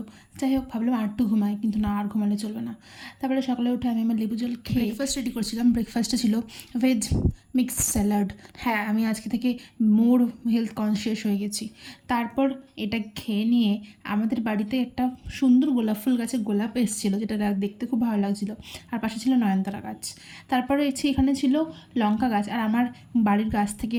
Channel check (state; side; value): identical; both; correlation 1.00